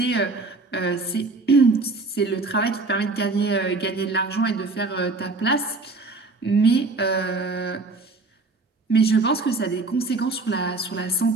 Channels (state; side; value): quieter; left; 3.5 dB